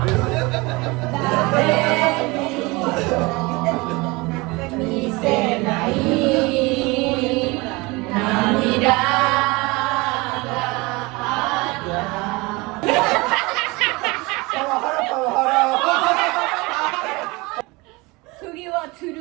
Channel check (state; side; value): quieter; left; 24.4 dB